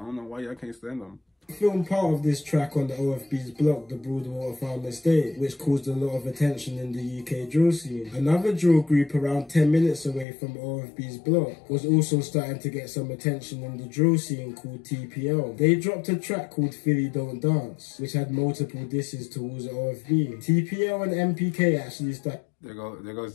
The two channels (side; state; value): right; drops out; at 10.2 s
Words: know why y'all can't send them. Filmed part of this track on the OFB's block, the Broadwater Farm Estate, which caused a lot of attention in the UK drill scene. Another drill group around 10 minutes away from OFB's block was also starting to get some attention in the drill scene called TPL. They dropped a track called Philly Don't Dance, which had multiple disses towards OFB. TPL and NPK actually started... There